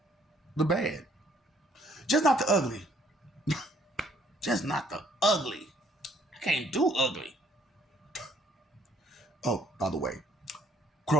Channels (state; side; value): normal; both; correlation 0.63